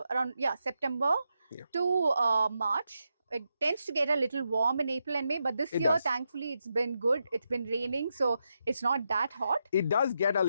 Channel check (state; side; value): inverted; both; correlation -0.85